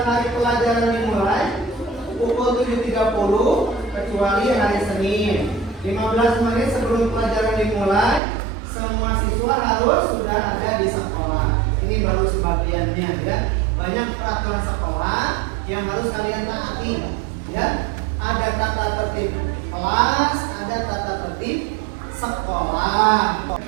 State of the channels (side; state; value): left; drops out; at 8.2 s